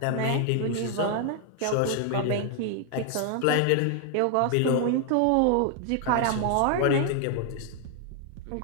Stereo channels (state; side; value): different; both; correlation 0.00